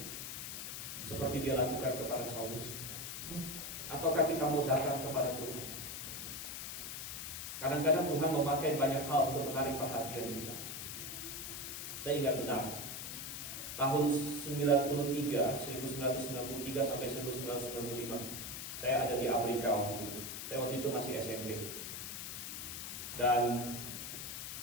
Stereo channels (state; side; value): noise; left; hiss, 6 dB below the sound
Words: seperti dia lakukan kepada Saulus? Ataukah kita mau datang kepada Tuhan? Kadang-kadang Tuhan memakai banyak hal untuk menarik perhatian kita. Saya ingat benar, tahun 1993 sampai 1995, saya ada di Amerika waktu itu. Saya waktu itu masih SMP. Dan